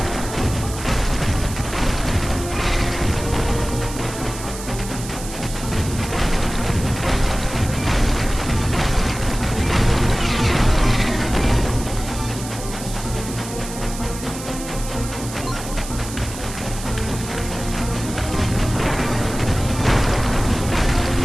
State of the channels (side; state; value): right; noise; hiss, 11 dB below the sound